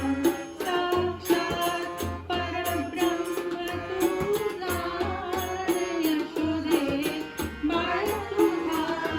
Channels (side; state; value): both; identical; correlation 1.00